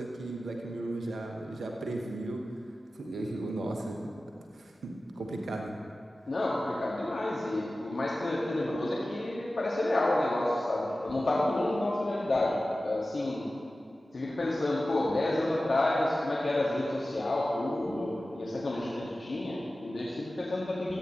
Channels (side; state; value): both; normal; correlation 0.95